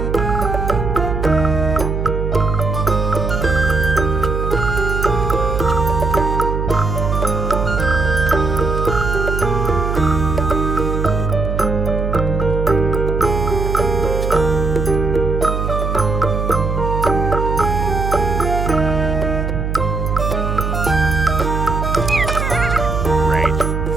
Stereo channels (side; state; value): right; noise; hum, 2 dB below the sound